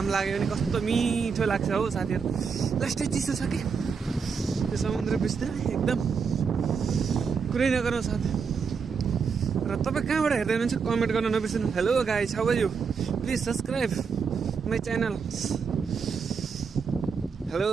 लाग्यो भने कस्तो मिठो लाग्छ हो साथीहरू। लास्टै चिसो छ कि त्यो समुद्र बिचतिर एकदम कुरै नगरौँ साथी। र तपाईँ कहाँबाट हेर्दै हुनुहुन्छ कमेन्ट गर्न नबिर्सिनु। Hello guys, how are you, please subscribe my channel. Hello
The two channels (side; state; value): left; quieter; 5.8 dB